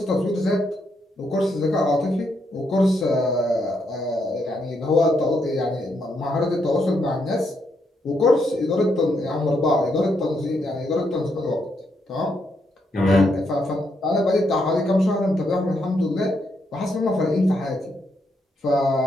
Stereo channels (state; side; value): normal; both; correlation 0.78